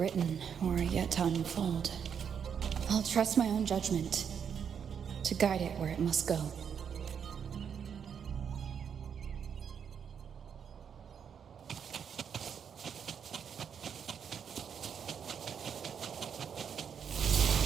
or yet to unfold. I'll trust my own judgment to guide it where it must go.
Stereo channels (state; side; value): quieter; left; 7.5 dB